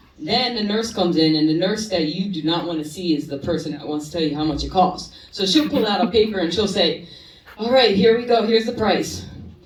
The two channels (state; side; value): identical; both; correlation 1.00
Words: Then the nurse comes in, and the nurse that you do not want to see is the person that wants to tell you how much it costs. So she'll pull out a paper, and she'll say, all right, here we go, here's the price.